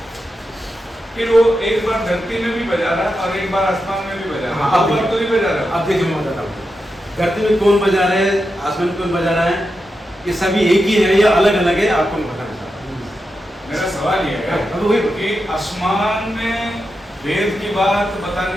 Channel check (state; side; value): normal; both; correlation 0.88